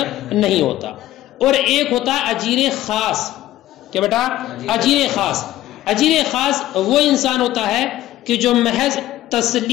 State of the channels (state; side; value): quieter; right; 14.5 dB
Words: نہیں ہوتا. اور ایک ہوتا اجیر خاص. کیا بیٹا؟ اجیر خاص. اجیر خاص وہ انسان ہوتا ہے کہ جو محض